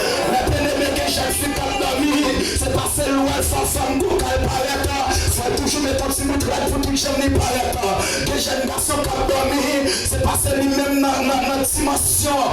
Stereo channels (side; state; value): both; identical; correlation 1.00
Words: maintenant, que je suis capable de dormir, c'est parce que l'ouest, ça femme, qu'elle paraît, faut toujours mettre un petit bout de pour tout jamais paraître, des jeunes garçons qui dormir, c'est parce que lui-même dans notre dimension,